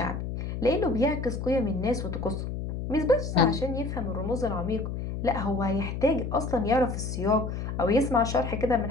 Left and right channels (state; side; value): noise; left; hum, 5 dB below the sound